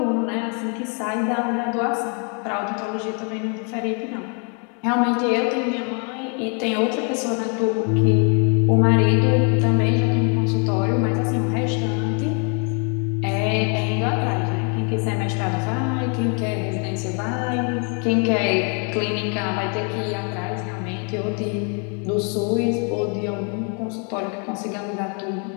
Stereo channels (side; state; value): right; quieter; 38.2 dB